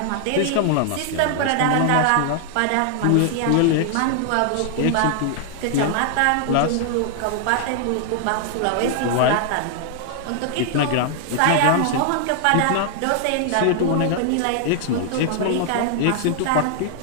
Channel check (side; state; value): both; different; correlation 0.00